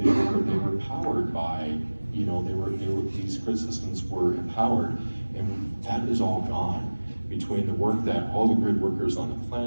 were powered by, these grid systems were empowered, and that is all gone. Between the work that all the grid workers on the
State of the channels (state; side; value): inverted; both; correlation -1.00